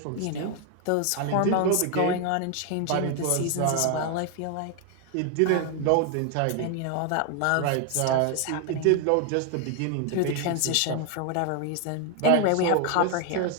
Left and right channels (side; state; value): both; different; correlation 0.01